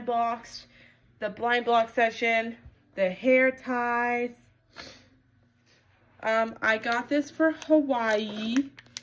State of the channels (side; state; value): both; identical; correlation 1.00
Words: Box, the Blind Box section, the hair ties. I got this for Hawaii.